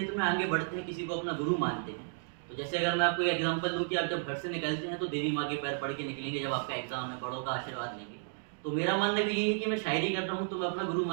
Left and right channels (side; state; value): left; silent; digital silence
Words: में आगे बढ़ते हैं, किसी को अपना गुरु मानते हैं, तो जैसे अगर मैं आपको एक एग्जांपल दूं कि आप जब घर से निकलते हैं तो देवी माँ के पैर पढ़ के निकलेंगे, जब आपका एग्जाम है बड़ों का आशीर्वाद लेंगे। तो मेरा मानना भी यही है कि मैं शायरी कर रहा हूँ तो मैं अपना गुरु